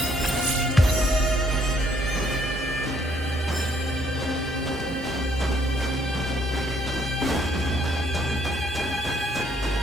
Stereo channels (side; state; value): both; normal; correlation 0.67